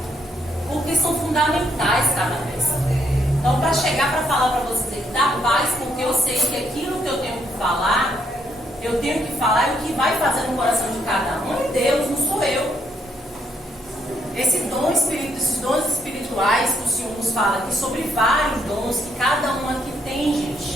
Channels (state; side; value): normal; both; correlation 0.73